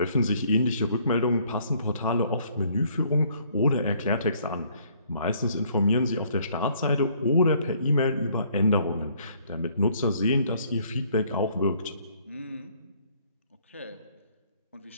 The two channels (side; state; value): both; inverted; correlation -0.63